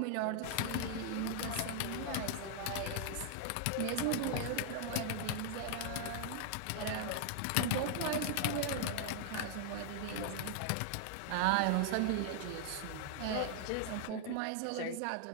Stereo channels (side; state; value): both; different; correlation 0.00